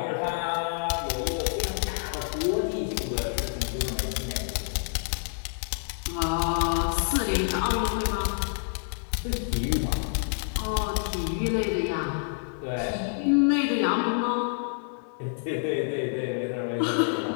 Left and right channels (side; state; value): right; silent; digital silence